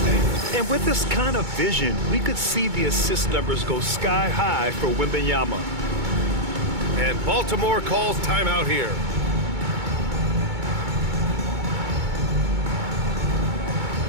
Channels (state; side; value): late; left; 2.2 ms